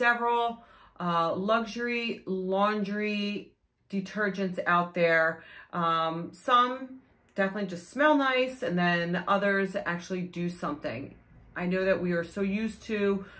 luxury laundry detergents out there. Some definitely just smell nice, and then others actually do something. I know that we are so used to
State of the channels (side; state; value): both; identical; correlation 1.00